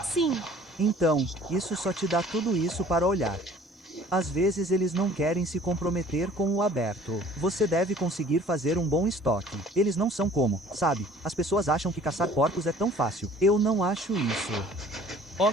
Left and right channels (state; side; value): normal; both; correlation 0.51